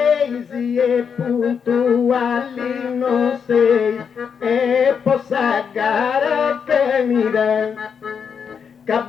e puntuali non sei e possa gara finire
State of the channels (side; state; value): right; quieter; 6.8 dB